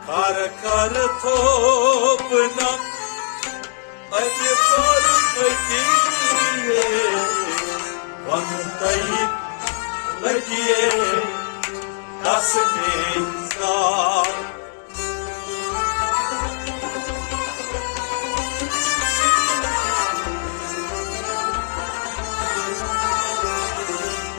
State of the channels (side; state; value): right; silent; digital silence